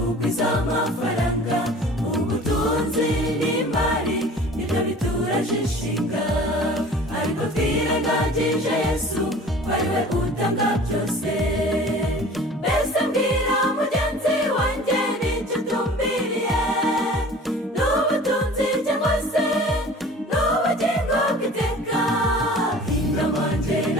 amafaranga, ubutunzi n'imari nibyo bituraje inshinga, ariko twirengagije Yesu ko ari we utanga byose. Mbese mbwira mugenzi wanjye n'icyo utumbiriye, n'ubutunzi cyangwa se n'ubugingo bw'iteka? Inama njye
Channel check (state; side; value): normal; both; correlation 0.44